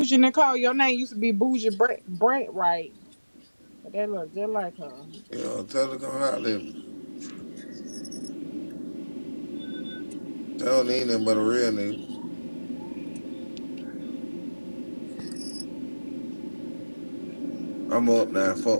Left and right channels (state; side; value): inverted; both; correlation -1.00